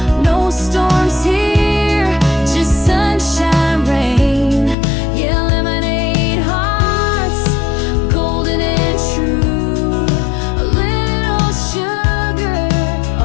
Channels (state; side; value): drops out; right; at 4.8 s